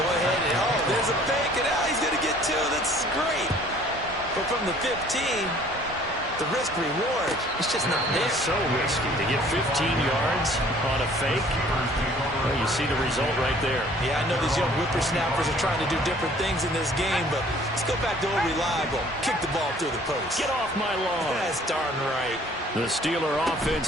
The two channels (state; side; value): normal; both; correlation 0.55